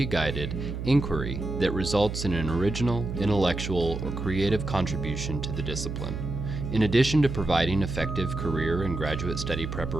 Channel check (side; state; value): right; noise; hum, 5 dB below the sound